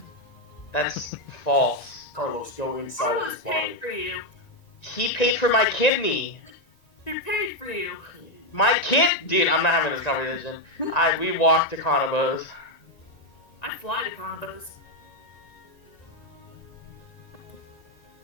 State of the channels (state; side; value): late; right; 1.9 ms